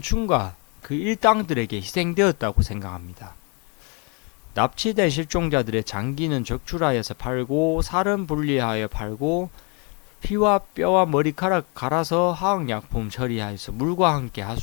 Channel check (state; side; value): quieter; right; 33.9 dB